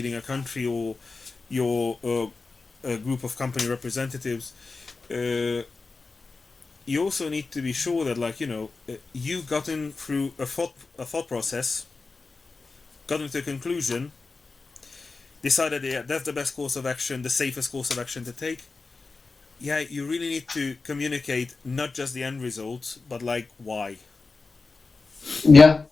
a country or you're a group of company representatives. You also need to be sure that, like, you've gotten through a thought process, gotten to a conclusion, decided, yeah, that's the best course of action, the safest course of action to take. Yeah, you really need to communicate not just the end result, but, like, why. Yeah.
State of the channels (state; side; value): quieter; right; 4.0 dB